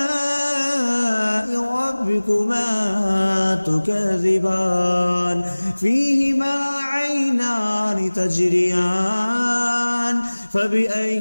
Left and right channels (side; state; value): both; inverted; correlation -1.00